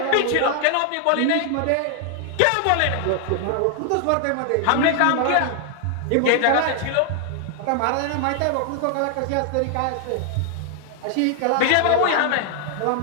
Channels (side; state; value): both; different; correlation 0.00